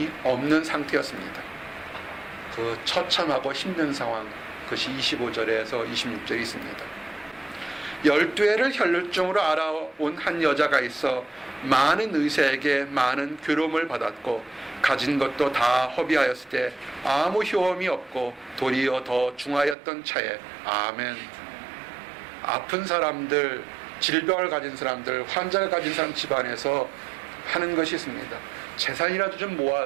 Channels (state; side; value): drops out; left; at 19.8 s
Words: 없는 상태였습니다. 그 처참하고 힘든 상황, 그것이 25절에서 26절에 있습니다. 12해를 혈루증으로 알아온 한 여자가 있어 많은 의사에게 많은 괴로움을 받았고 가진 것도 다 허비하였을 때 아무 효험이 없고 도리어 더 중하였던 차에. 아멘. 아픈 사람들, 질병을 가진 사람들, 환자를 가진 사람 집안에서 하는 것이 있습니다. 재산이라도 좀